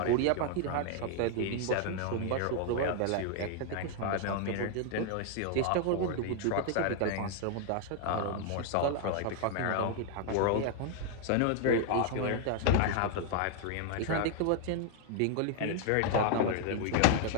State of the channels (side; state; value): both; different; correlation 0.00